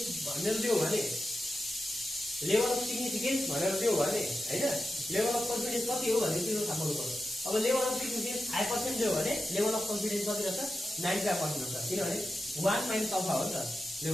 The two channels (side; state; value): both; normal; correlation 0.90